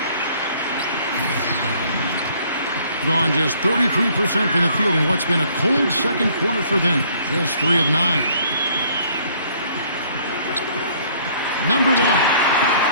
Gone just 33% from the field in what's been a cold second quarter for them. Just 3 of 9. Number 1.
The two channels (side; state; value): both; inverted; correlation -0.60